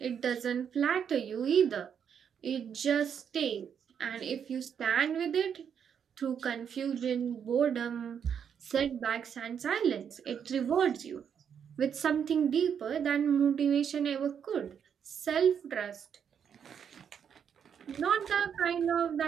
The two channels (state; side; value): quieter; left; 7.8 dB